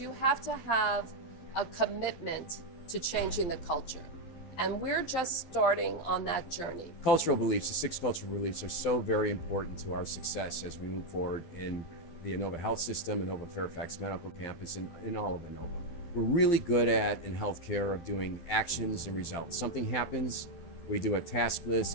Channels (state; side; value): late; right; 12 ms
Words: have to have a commitment to changing the culture. And we're just starting on that journey. Cultural beliefs, the 6 cultural beliefs, are so very important to our success as we move forward in the Inova Health System, Inova Fairfax Medical Campus, and in all of Inova. We're really good at, in healthcare, of doing actions and results. Something happens, we do a task